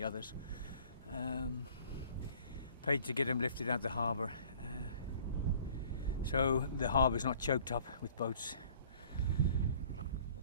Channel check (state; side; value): inverted; both; correlation -0.53